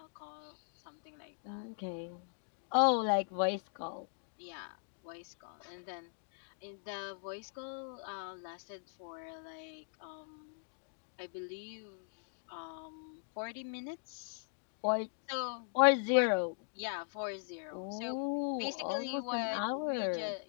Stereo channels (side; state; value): right; silent; digital silence